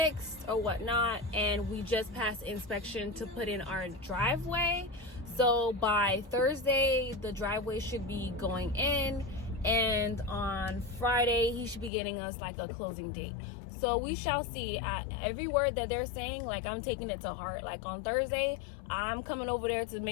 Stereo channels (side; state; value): right; drops out; at 11.9 s